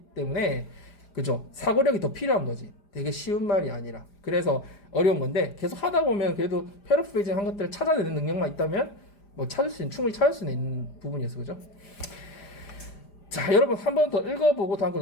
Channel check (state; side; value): late; right; 5.0 ms